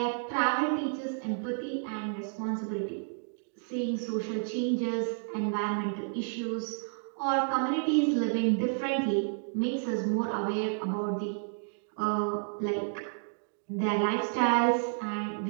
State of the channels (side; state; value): left; silent; digital silence